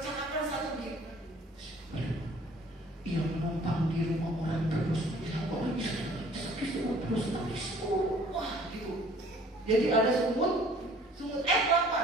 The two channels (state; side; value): normal; both; correlation 0.54